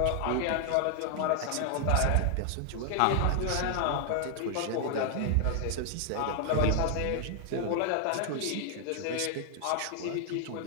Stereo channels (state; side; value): different; both; correlation 0.00